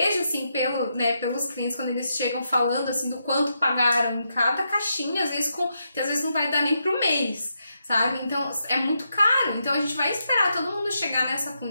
assim, pelos clientes, quando eles chegam falando, assim, do quanto pagaram em cada caixinha, às vezes que às vezes não vai dar nem pro mês, sabe? Então, é muito caro. Então, a gente vai esperar todo mundo chegar nessa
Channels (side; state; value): both; inverted; correlation -0.82